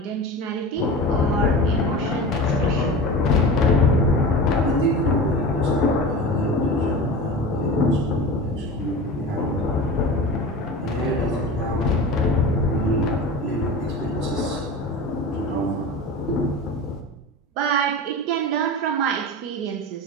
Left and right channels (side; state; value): both; normal; correlation 0.30